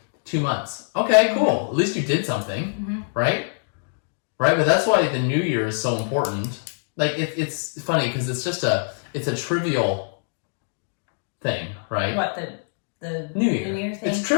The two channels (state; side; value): silent; right; digital silence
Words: 2 months. Okay, cool. At least you did something, right? Right? But that's why the New Year is so important. Like, it's funny because it's a trivial thing, right? What, the New Year. New Year thing? It's